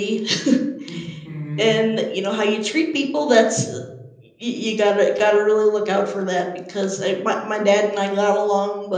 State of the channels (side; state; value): both; identical; correlation 1.00